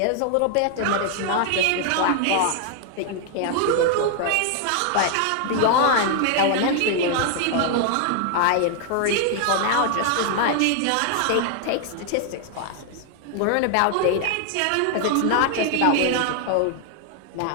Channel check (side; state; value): both; different; correlation 0.00